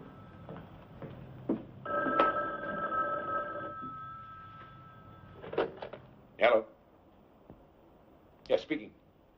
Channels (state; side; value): identical; both; correlation 1.00